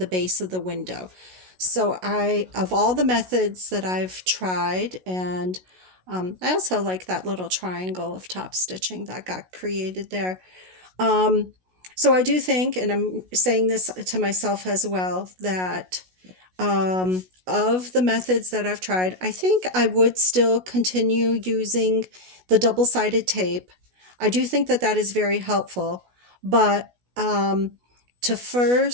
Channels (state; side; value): late; left; 16 ms